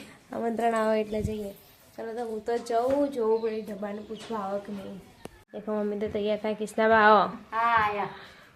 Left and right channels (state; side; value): identical; both; correlation 1.00